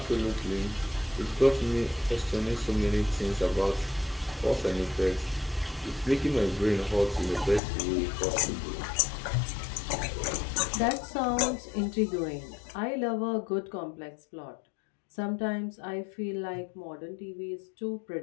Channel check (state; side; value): drops out; right; at 7.6 s